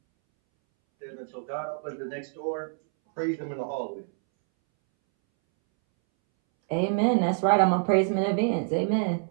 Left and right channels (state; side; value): silent; left; 60 dB below the other